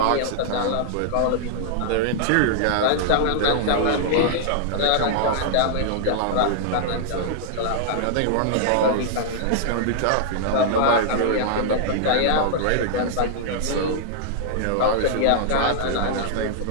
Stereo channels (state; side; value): different; both; correlation -0.01